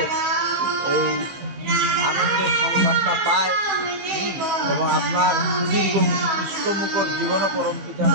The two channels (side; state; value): left; late; 15 ms